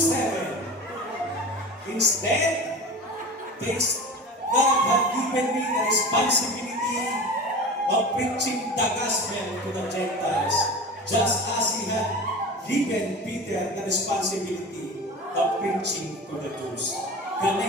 Instead, God had given me the responsibility of preaching the gospel to the Gentiles, just as He had given Peter the responsibility of preaching to the Jews.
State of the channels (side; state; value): both; normal; correlation 0.33